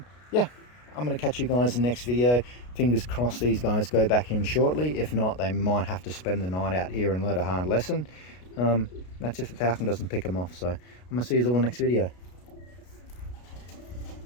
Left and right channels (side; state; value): right; late; 33 ms